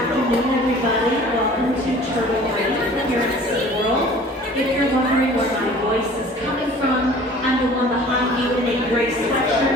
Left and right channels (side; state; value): both; normal; correlation 0.47